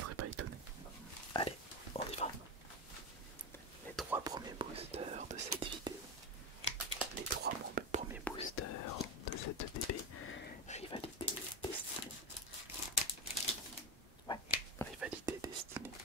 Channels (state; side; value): normal; both; correlation 0.15